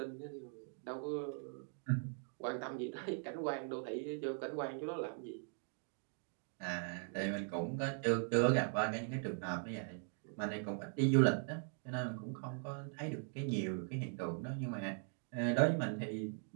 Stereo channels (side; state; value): left; silent; 51 dB below the other